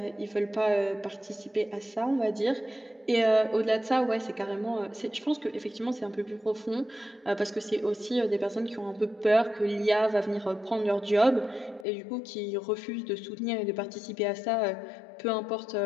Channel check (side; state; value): right; drops out; at 11.9 s